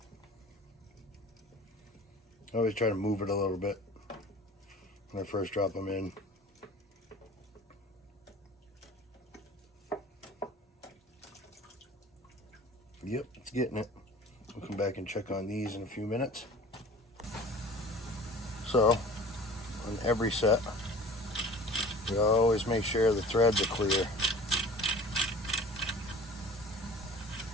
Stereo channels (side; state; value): both; normal; correlation 0.44